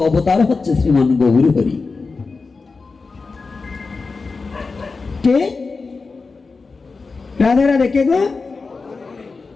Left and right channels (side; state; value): right; quieter; 4.3 dB